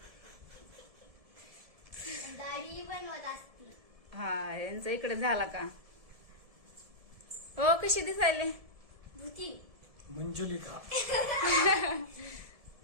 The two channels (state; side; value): late; left; 1.7 ms